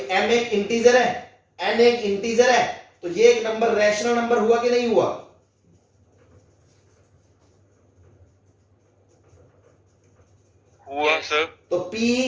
एक इंटीजर है, n एक इंटीजर है, तो ये एक नंबर रैशनल नंबर हुआ कि नहीं हुआ? हुआ सर। तो p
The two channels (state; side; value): identical; both; correlation 1.00